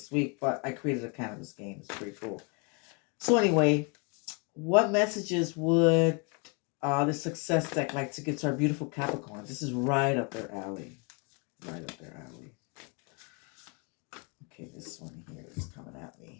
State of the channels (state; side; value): quieter; right; 33.4 dB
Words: week. But I created a cannabis game. It's pretty cool. So anyway, what messages would the success deck like to give to our beautiful Capricorns? This is right up their alley. Right up their alley. Okay, this one here is coming at